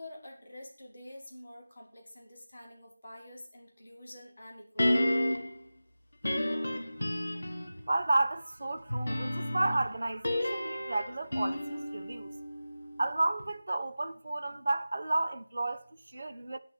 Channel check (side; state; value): both; inverted; correlation -0.96